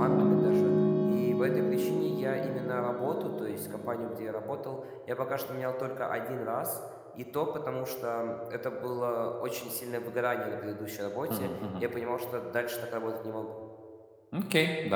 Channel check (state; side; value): identical; both; correlation 1.00